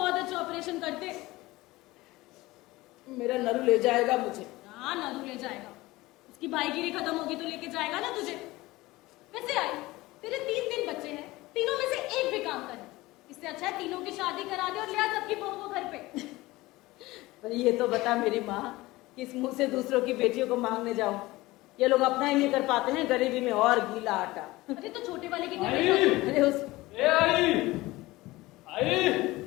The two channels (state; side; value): quieter; right; 19.5 dB